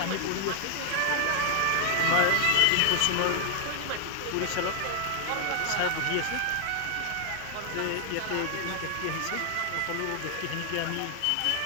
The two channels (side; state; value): both; different; correlation -0.01